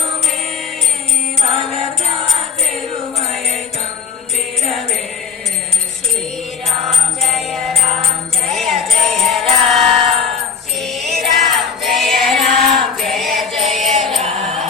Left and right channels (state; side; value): quieter; right; 6.2 dB